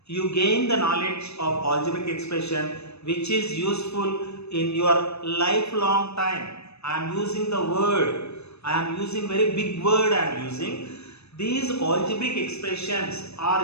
You gain the knowledge of algebraic expression which is useful in your lifelong time. I am using the word, I am using very big word I am using. These algebraic expressions are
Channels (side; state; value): right; late; 0.79 ms